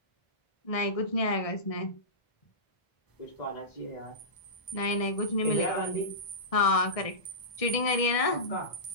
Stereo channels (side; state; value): right; late; 1.6 ms